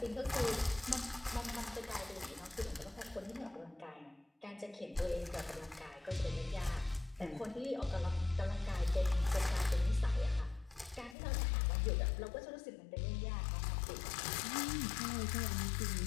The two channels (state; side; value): drops out; right; at 11.2 s